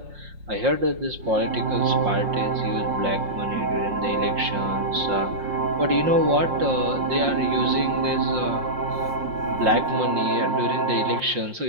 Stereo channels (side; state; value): left; late; 5.6 ms